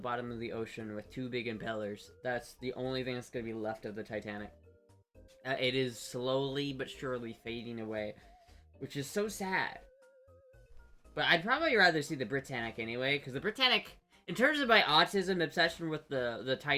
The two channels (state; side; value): identical; both; correlation 1.00